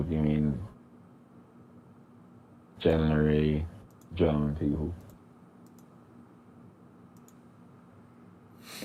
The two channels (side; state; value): both; identical; correlation 1.00